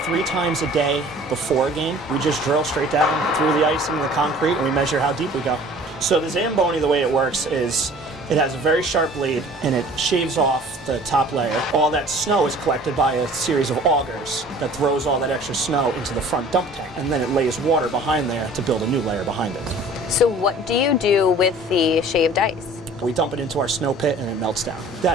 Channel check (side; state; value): both; normal; correlation 0.48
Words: 3 times a day before a game. We just drill straight down through the ice into the concrete and we measure how deep we go. So the Zamboni, the way it works is it has a very sharp blade and it shaves off the top layer. All that snow is collected by a series of augers that throws all that extra snow into the front dump tank, and then it lays water behind there to build a new layer behind it. So what do you do with the shaved ice? We dump it into our snow pit and it melts down.